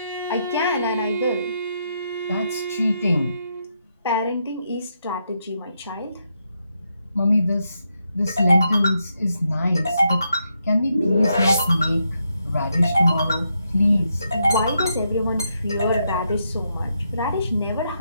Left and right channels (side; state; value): both; inverted; correlation -0.81